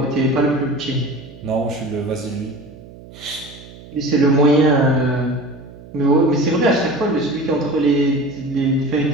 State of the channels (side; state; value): right; noise; hum, 19 dB below the sound